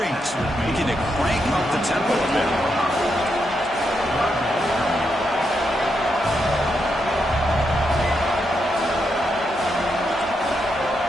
looking to crank up the tempo a bit.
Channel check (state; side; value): noise; right; hum, 22 dB below the sound